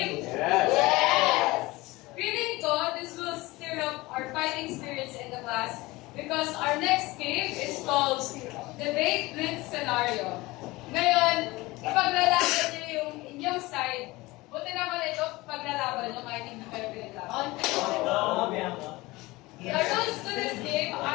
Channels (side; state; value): right; quieter; 20.9 dB